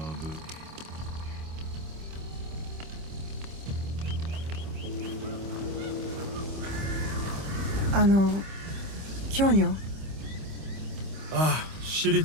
Kyonyo. Ah, shitty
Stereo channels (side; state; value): left; late; 25 ms